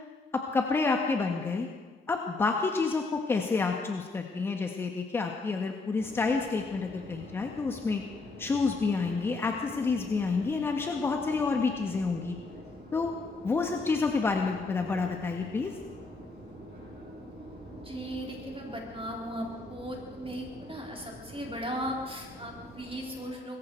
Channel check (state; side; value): quieter; right; 3.6 dB